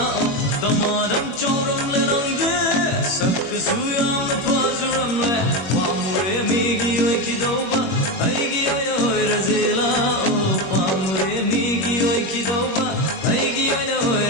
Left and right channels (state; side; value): late; right; 21 ms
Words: Damadam chauram larangde sakkasu yamna fajaramle pamure megi oi ki dauba aigi oina ore sela pamure megi oi ki dauba aigi oina